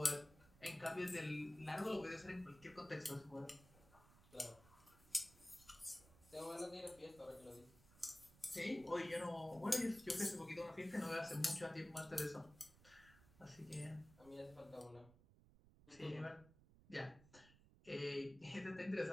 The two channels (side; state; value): right; noise; rumble, 23 dB below the sound